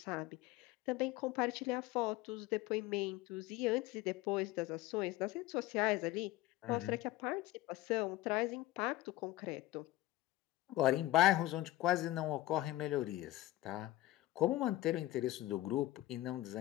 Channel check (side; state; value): right; quieter; 16.5 dB